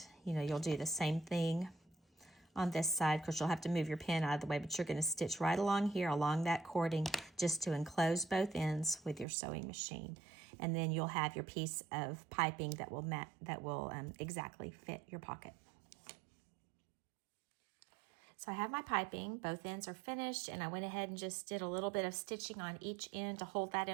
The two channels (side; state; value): left; drops out; at 9.2 s